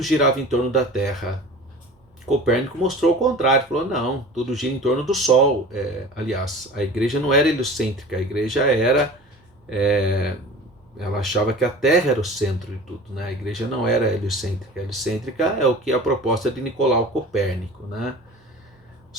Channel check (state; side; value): normal; both; correlation 0.39